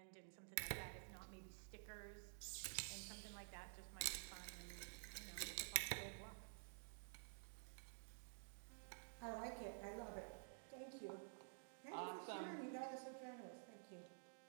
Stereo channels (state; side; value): silent; left; digital silence